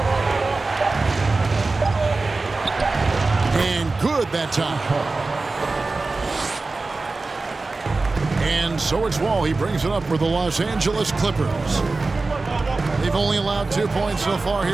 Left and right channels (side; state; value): left; quieter; 3.6 dB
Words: And good that time. And so it's Wall. He brings it up for the Los Angeles Clippers. They've only allowed 2 points so far